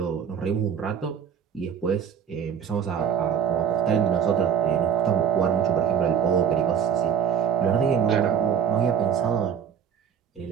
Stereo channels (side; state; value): left; quieter; 8.1 dB